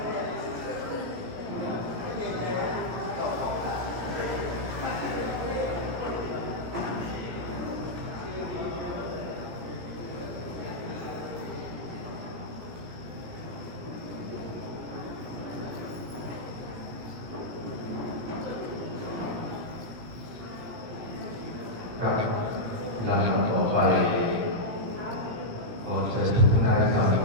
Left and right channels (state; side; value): late; left; 17 ms